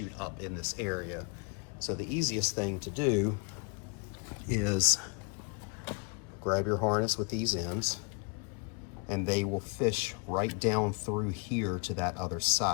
up in this area. So the easiest thing to do is grab your harness with these ends, and they will fish right down through here to that other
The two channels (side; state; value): right; quieter; 34.5 dB